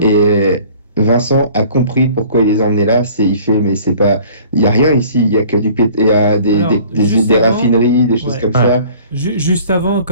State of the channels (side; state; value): both; inverted; correlation -0.50